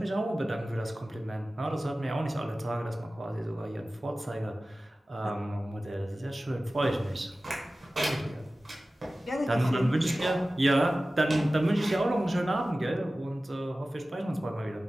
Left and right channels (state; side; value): normal; both; correlation 0.96